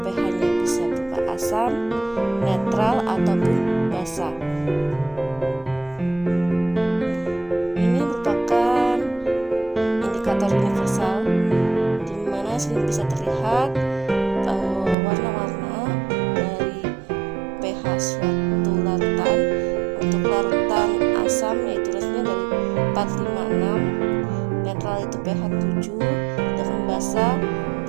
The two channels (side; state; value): left; drops out; at 15.0 s